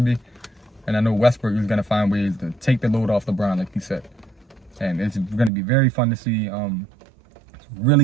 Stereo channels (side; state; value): left; drops out; at 5.5 s